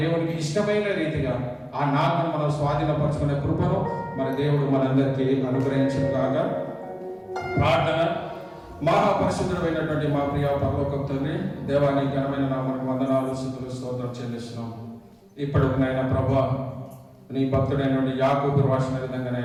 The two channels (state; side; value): identical; both; correlation 1.00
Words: దేవుడికి ఇష్టమైన రీతిగా ఆ నాలుగును మనం స్వాధీనపరుచుకునే కృపను మరి దేవుడు మనందరికీ అనుగ్రహించును గాక. ప్రార్థన. మహాపరిశుద్ధుడైనటువంటి మా ప్రియ పరలోకపు తండ్రి, దేవాని ఘనమైన నామమునకు వందనాలు, స్తుతులు, స్తోత్రం చెల్లిస్తున్నాం. ఇప్పుడు నాయన ప్రభా, నీ భక్తుడైనటువంటి యాకోబు రాసిన విధంగా